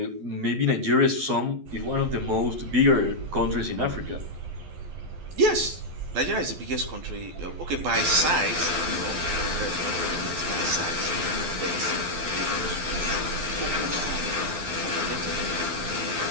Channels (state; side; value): late; left; 12 ms